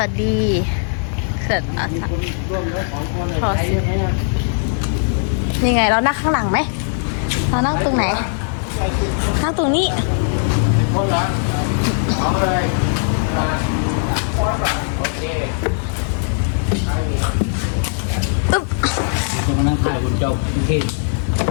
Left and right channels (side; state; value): right; silent; digital silence